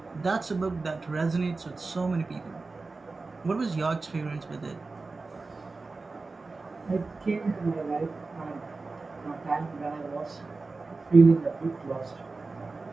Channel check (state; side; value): quieter; left; 3.8 dB